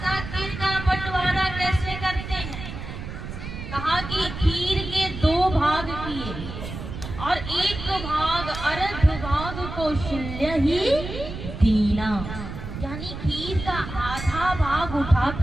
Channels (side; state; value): right; noise; rumble, 9 dB below the sound